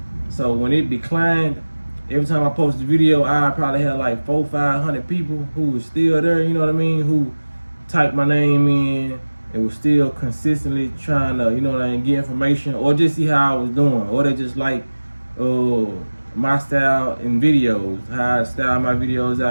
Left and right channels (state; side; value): inverted; both; correlation -1.00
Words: So when it declined, every time I post a video, I probably had like 400-500 people who was still there, you know what I mean? Who typed my name in and was still consistently trying to, you know what I mean, get information or just see how I was doing. Or they just like my style in videos, how I style my videos